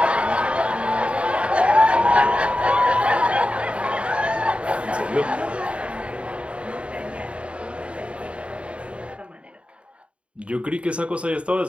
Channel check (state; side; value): late; left; 0.060 ms